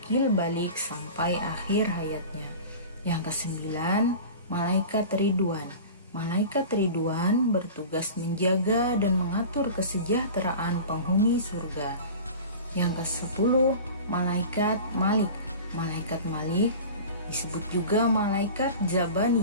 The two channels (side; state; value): both; inverted; correlation -0.36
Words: balik sampai akhir hayatnya. Yang kesembilan, malaikat ridwan. Malaikat ridwan bertugas menjaga dan mengatur kesejahteraan penghuni surga. Yang ke-10, malaikat malik. Malaikat malik disebut juga malaikat